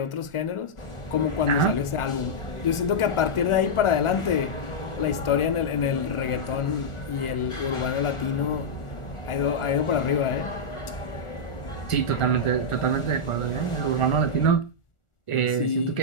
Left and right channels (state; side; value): late; right; 1.4 ms